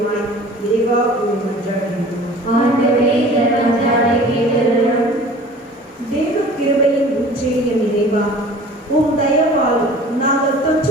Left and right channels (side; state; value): both; normal; correlation 0.45